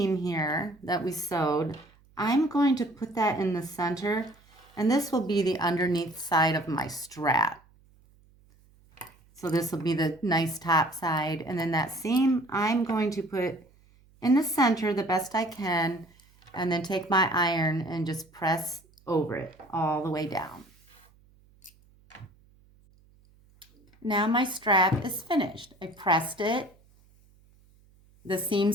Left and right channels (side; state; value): right; noise; hum, 30 dB below the sound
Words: here that we sewed. I'm going to put that in the center, and this will be the underneath side of my strap. So this will be the nice top side, and then that seam I'm going to put in the center the best I can, and then take my iron and just press over it all the way down. Now my strap is finished. I pressed it. The